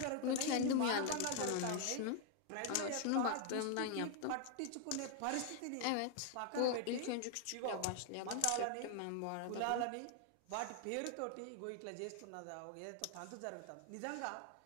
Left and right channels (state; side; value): different; both; correlation 0.00